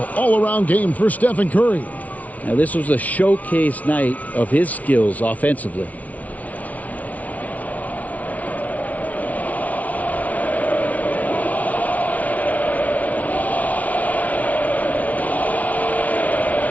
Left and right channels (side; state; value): right; late; 0.071 ms